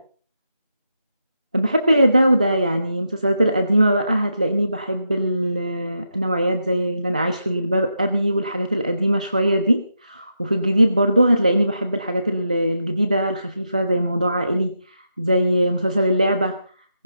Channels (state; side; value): inverted; both; correlation -0.84